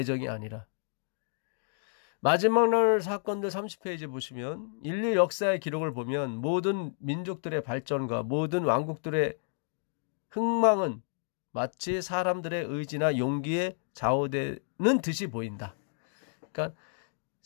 아니라. 마지막 날 사건들 30페이지 보시면 인류 역사의 기록을 보면 모든 민족들의 발전과 모든 왕국들의 흥망은 마치 사람들의 의지나 용기에 좌우되는 듯이 보인다. 그러니까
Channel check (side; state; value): right; silent; digital silence